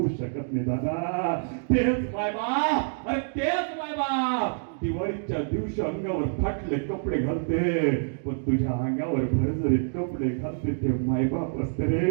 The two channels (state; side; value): silent; left; digital silence